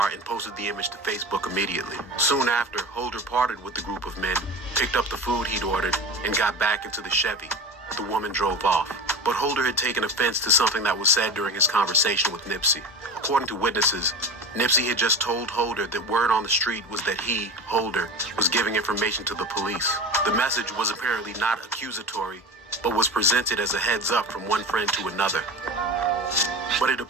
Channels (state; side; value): normal; both; correlation 0.29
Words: and posted the image to Facebook immediately. Soon after, Holder parted with the group of men, picked up the food he'd ordered, and got back into the Chevy. The woman drove off. But Holder had taken offense to something that was said during his conversation with Nipsey. According to witnesses, Nipsey had just told Holder that word on the street was that he, Holder, was giving information to the police. The message was apparently not accusatory, but was presented as a heads up from one friend to another. But it